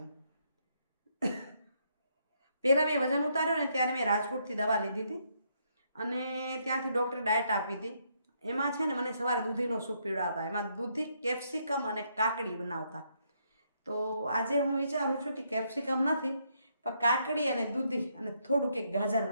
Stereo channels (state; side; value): inverted; both; correlation -0.74